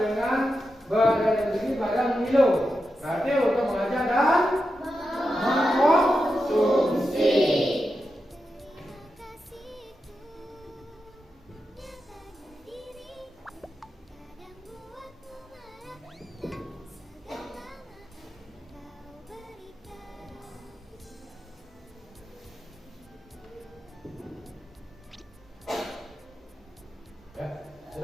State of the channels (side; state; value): both; normal; correlation 0.89